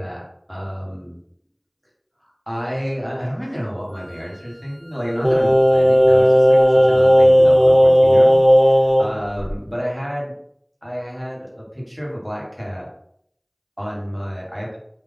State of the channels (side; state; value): both; identical; correlation 1.00